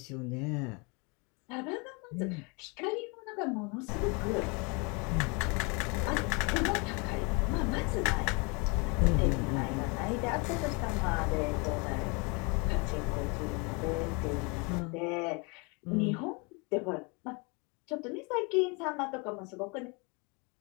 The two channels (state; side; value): quieter; right; 31.0 dB